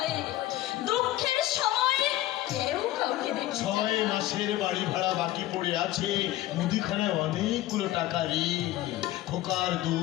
দুঃখের সময় কেউ কাউকে দেখে 6 মাসের বাড়ি ভাড়া বাকি পড়ে আছে, মুদিখানায় অনেকগুলো টাকা ঋণ, খোকার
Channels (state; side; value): quieter; right; 15.3 dB